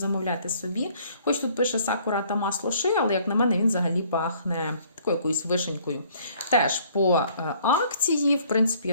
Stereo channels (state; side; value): inverted; both; correlation -0.60